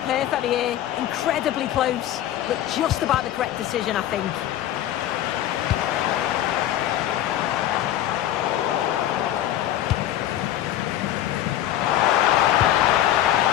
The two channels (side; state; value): right; quieter; 12.5 dB